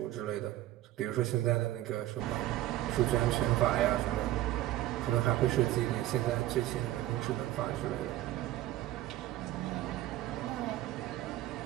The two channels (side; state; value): left; quieter; 14.8 dB